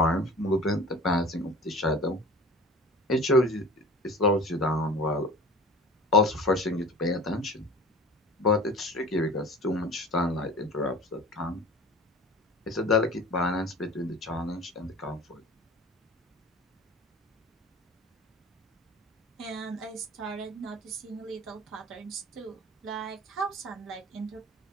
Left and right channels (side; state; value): both; normal; correlation 0.40